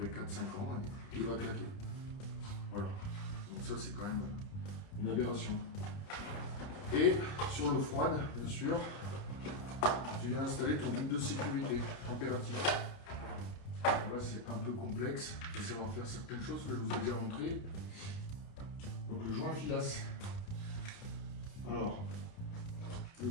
4-5 ans et il va claquer. Voilà. Donc ça, c'est quand même une aberration. Et sur l'eau froide, bien sûr, tu viens installer ton groupe de sécurité température. Là, c'est un peu complexe de savoir faire certaines choses que je vous ai déjà montré. Donc le joint filasse. Alors, le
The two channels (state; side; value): late; right; 30 ms